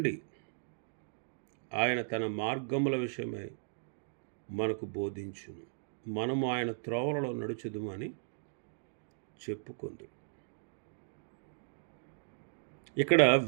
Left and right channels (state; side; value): silent; left; digital silence